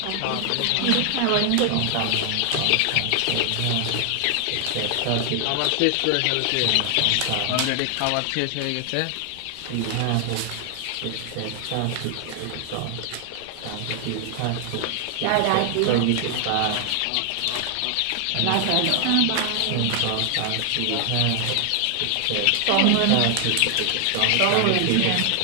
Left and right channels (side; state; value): both; different; correlation 0.00